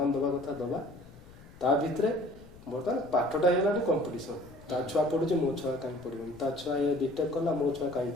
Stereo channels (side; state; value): left; noise; rumble, 22 dB below the sound